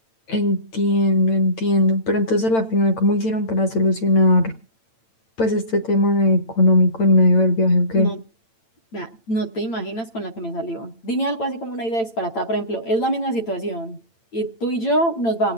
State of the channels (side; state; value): right; late; 8.9 ms